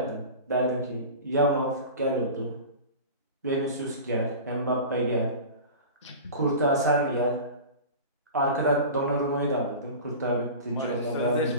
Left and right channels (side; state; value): both; inverted; correlation -0.34